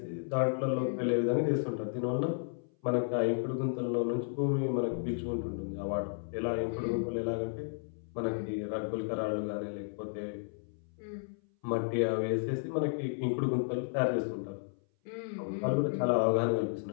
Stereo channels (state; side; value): silent; right; 56 dB below the other